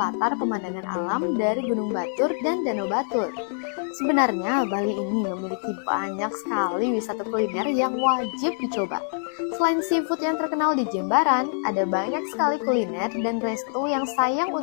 latar pemandangan alam dari Gunung Batur dan Danau Batur. Sebenarnya, Bali ini memiliki banyak sekali wisata kuliner yang wajib dicoba. Selain seafood yang terkenal di Jembaran, ada banyak sekali kuliner dan resto yang sayang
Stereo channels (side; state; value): right; silent; 62 dB below the other